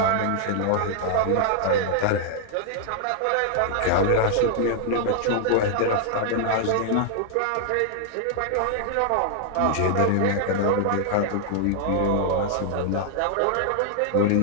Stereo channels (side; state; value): both; different; correlation 0.00